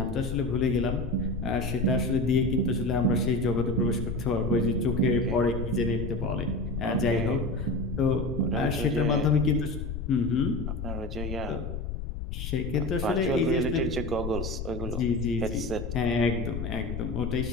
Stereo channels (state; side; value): noise; left; rumble, 6 dB below the sound